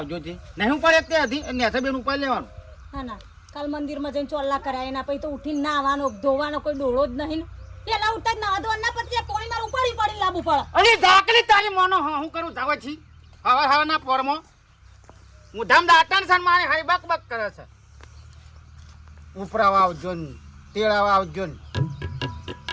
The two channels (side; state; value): both; identical; correlation 1.00